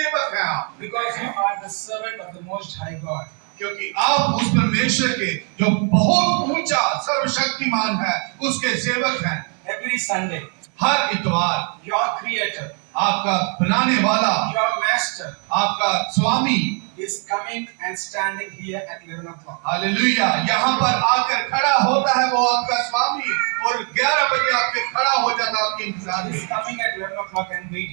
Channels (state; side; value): quieter; left; 39.6 dB